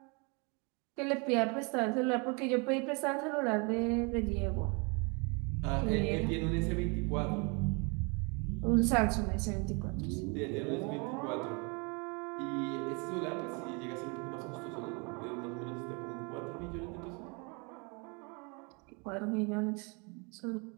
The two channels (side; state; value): left; quieter; 32.0 dB